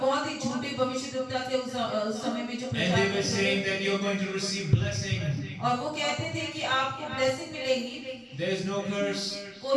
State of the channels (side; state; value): both; identical; correlation 1.00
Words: बहुत ही झूठे भविष्यद्वक्ता थे उस समय में जो And प्रचार they were करते saying थे, that you're going to receive blessing. और वो कहते थे कि आपको ब्लेसिंग मिलेगी, There is no curse.